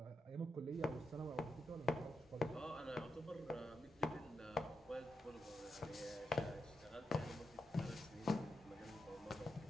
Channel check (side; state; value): both; normal; correlation 0.85